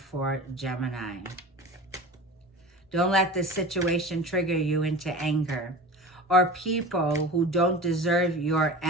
Gemini. Don't let this situation trigger you into anger. Or people who don't deserve your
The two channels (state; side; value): normal; both; correlation 0.35